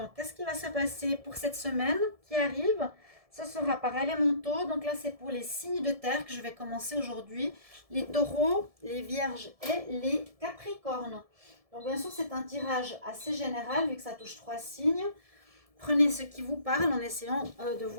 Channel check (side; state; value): left; late; 1.7 ms